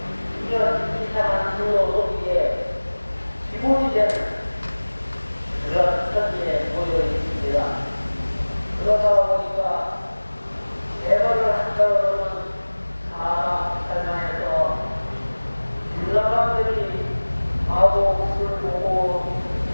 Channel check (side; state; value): both; inverted; correlation -1.00